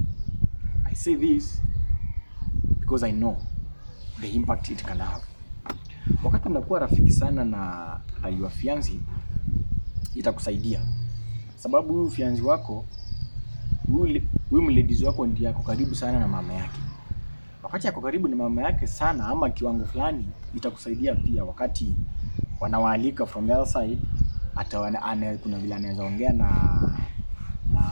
I say this because I know the impact it can have. Wakati unakuwa rafiki sana na your fiancé, itakusaidia. Sababu huyu fiancé wako, huyu mladies wako ndiye ako karibu sana na mama yake. Wakati ako karibu na mama yake sana ama kiwango fulani, itakusaidia pia wakati wanawaalika from the other side. Kuna vile anaweza ongea na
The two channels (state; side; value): inverted; both; correlation -1.00